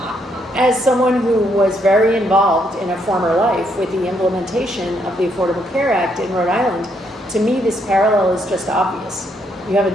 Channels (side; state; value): both; normal; correlation 0.74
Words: as someone who was very involved in a former life with the implementation of the Affordable Care Act in Rhode Island, to me this parallel is just obvious. You have